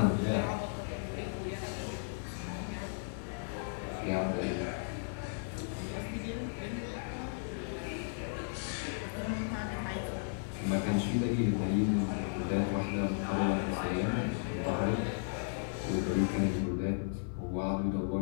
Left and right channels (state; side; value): silent; right; digital silence